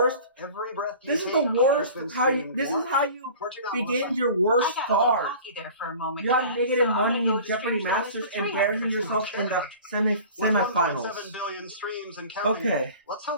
Every breath you This is take the has worst. been This is streamed how you once. begin your worst I got start. cocky there for a moment. You have yeah. negative So I'm money gonna go in to Jeopardy streams Masters, for 300. embarrassing yourself in the With semifinals. 1.7 billion streams and counting. Okay. Let's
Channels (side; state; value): both; inverted; correlation -0.42